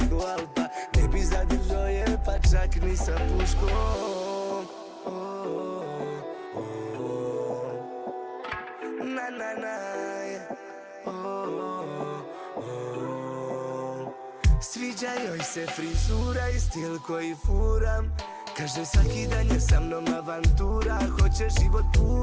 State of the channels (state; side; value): identical; both; correlation 1.00